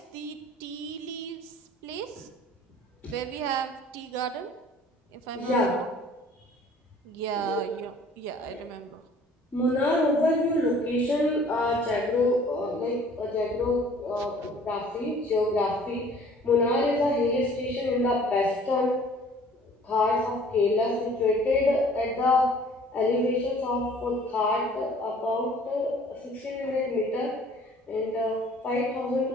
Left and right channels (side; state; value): both; normal; correlation 0.53